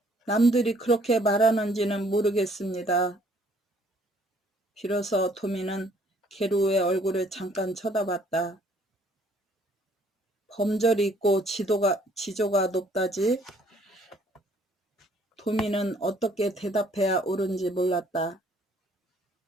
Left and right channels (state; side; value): normal; both; correlation 0.62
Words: 남들이 그렇게 말하는지는 모르겠습니다. 비로소 도미는 계루의 얼굴을 잠깐 쳐다봤다. 범절이 있고 지조가 높다지? 도미는 어떻게 대답해야 옳은지 몰랐다.